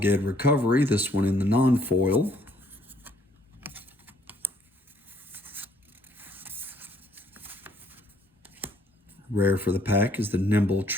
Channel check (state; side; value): normal; both; correlation 0.64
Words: Recovery, this one in the non-foil. Rare for the pack is the Nimble